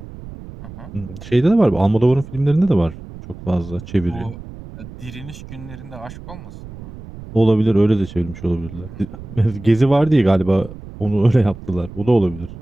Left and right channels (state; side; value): noise; right; rumble, 15 dB below the sound